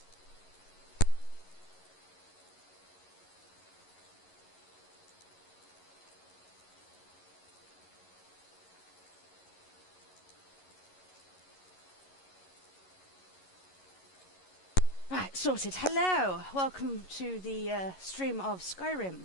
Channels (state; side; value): late; right; 11 ms